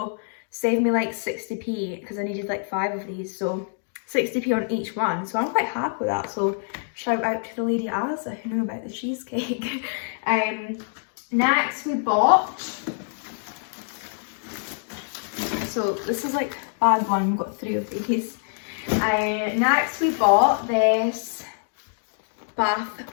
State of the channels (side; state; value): right; silent; digital silence